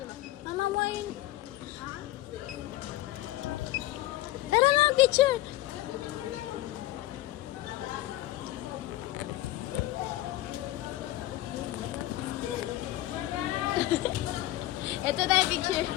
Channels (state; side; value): quieter; right; 16.3 dB